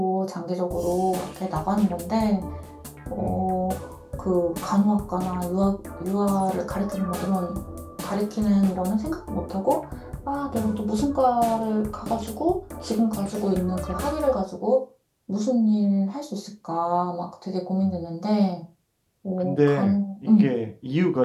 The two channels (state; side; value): identical; both; correlation 1.00